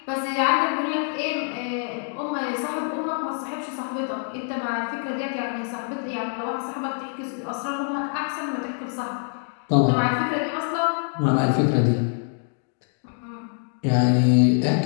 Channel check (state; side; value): silent; right; 57 dB below the other